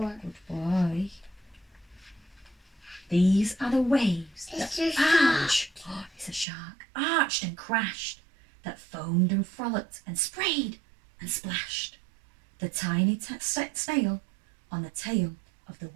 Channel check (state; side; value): drops out; left; at 6.5 s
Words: Good boy. These are the waves It's that a shark. arch. Oh, it's a shark. Arched and crashed, that foamed and frolicked and sprayed and splashed. The tiny snail on the tail of the